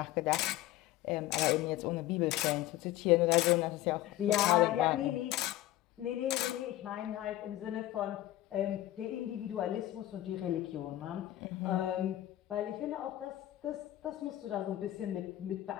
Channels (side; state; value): right; quieter; 14.7 dB